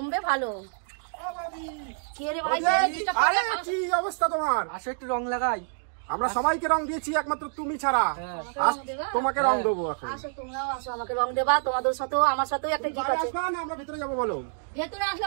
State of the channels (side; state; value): left; silent; digital silence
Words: ভালো আরে কি অবস্থা তোমার? আসো একটু রং লাগাই। আমরা সবাইকে রং দিয়েছি একমাত্র তুমি ছাড়া। তোমাকে রং দেবো এখন। আসো তোমরাও আসো আমাকে রং দেবা তোমাদের সাথেও আমার সাথেও একটা কি আছে আমরা ভিতরে যাবো বলো। ভেতরে আসলে